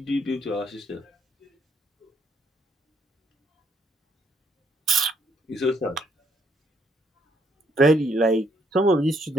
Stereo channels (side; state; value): both; normal; correlation 0.70